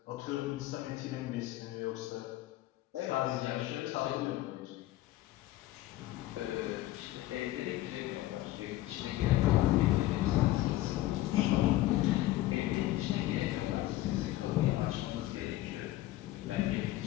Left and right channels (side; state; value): right; quieter; 15.8 dB